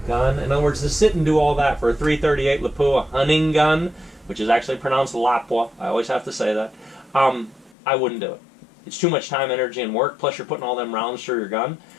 gun, in other words, to sit and do all that for a 338 Lapua hunting gun, which is actually pronounced Lapua, I always have to say that, I wouldn't do it. It's too much time, energy, and work, plus you're putting all them rounds through your gun.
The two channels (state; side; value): drops out; right; at 7.8 s